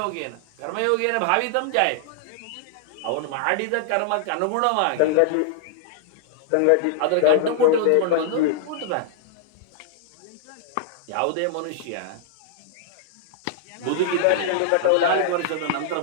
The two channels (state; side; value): different; both; correlation -0.01